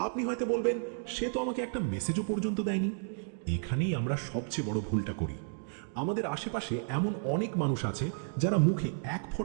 আপনি হয়তো বলবেন, সে তো আমাকে একটা মেসেজও পর্যন্ত দেয়নি। এখানেই আমরা সবচেয়ে বড় ভুলটা করি। আমাদের আশেপাশে এমন অনেক মানুষ আছে যারা মুখে এক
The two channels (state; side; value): silent; left; digital silence